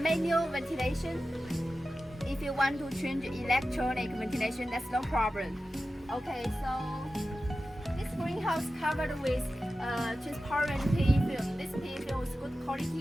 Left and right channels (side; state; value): both; normal; correlation 0.93